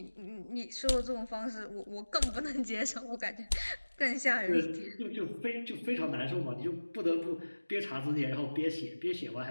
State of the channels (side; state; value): both; inverted; correlation -1.00